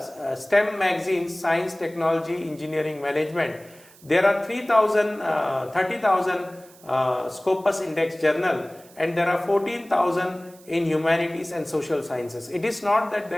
STEM magazines, science, technology, engineering, management, there are 30,000 Scopus index journal, and there are 14,000 in humanities and social sciences. It is not that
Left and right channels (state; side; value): noise; right; hiss, 24 dB below the sound